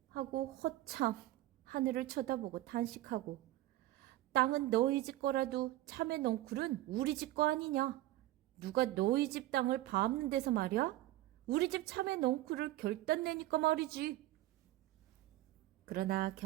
하고 허참 하늘을 쳐다보고 탄식하고 땅은 너희 집 거라도 참외 넝쿨은 우리 집 거 아니냐? 누가 너희 집 땅을 밟는 데서 말이야? 우리 집 참외 넝쿨을 결단 내니까 말이지. 그러나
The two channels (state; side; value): quieter; left; 15.9 dB